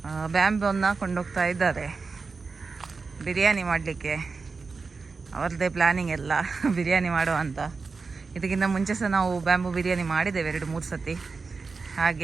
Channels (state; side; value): quieter; left; 4.5 dB